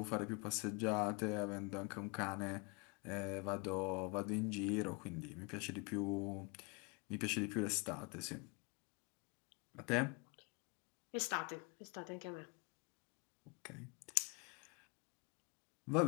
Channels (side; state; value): right; quieter; 31.5 dB